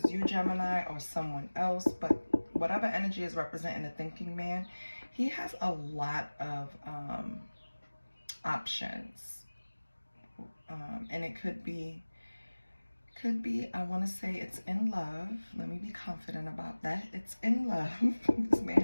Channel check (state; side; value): inverted; both; correlation -1.00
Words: you, Gemini, or someone else, but whatever energy is representing the thinking man, he has a lot of options. And it could be, I want to say it's in love. Let me be confident about that. It's in love. This man